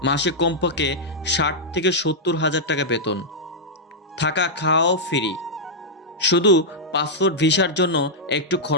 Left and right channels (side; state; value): both; normal; correlation -0.06